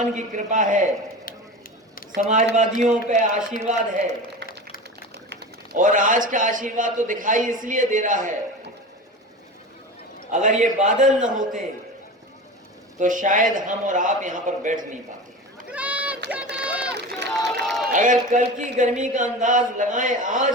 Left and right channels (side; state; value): both; normal; correlation 0.30